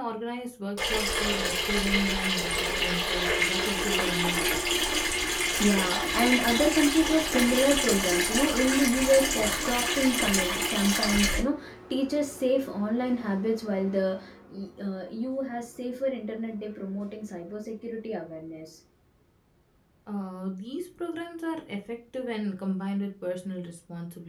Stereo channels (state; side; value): identical; both; correlation 1.00